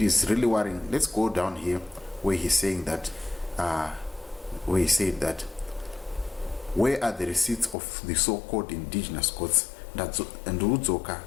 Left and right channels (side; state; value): right; drops out; at 7.8 s